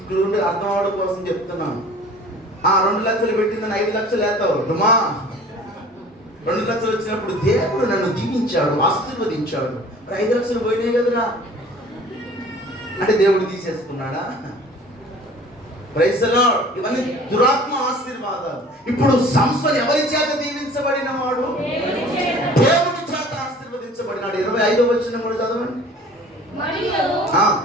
క్లూ అర్థం అవడం కోసం చెప్తున్నాను. 2 లక్షలు పెట్టిందని 5 లక్షలు వేస్తావు డుమా. 2 లక్షలు వచ్చినప్పుడు దేవుడు నన్ను దీవించాడు, ఆశీర్వదించాడు. 5 లక్షలు పోయినాయి కదరా అంటే దేవుడు తీసేసుకున్నాడా? Praise the lord. ఇవన్నీ దురాత్మ ఆశీర్వాదాలు. ఇప్పుడు సంసోను ఎవరి చేత దీవించబడిన వాడు? దేవుడి చేత ఆశీర్వదించబడినాడు. 25వ వచనం కూడా చదవండి.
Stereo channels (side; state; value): both; normal; correlation 0.47